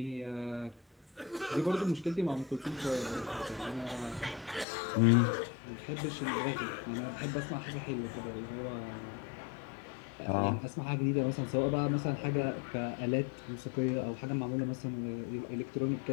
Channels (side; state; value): right; drops out; at 4.7 s